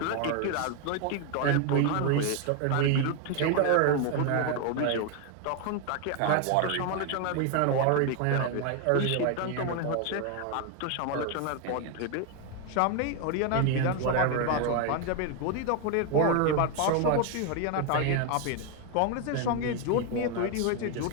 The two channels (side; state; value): both; different; correlation 0.01